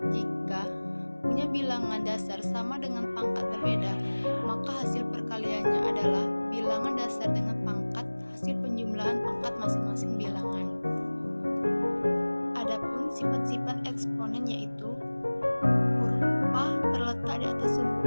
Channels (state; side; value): inverted; both; correlation -1.00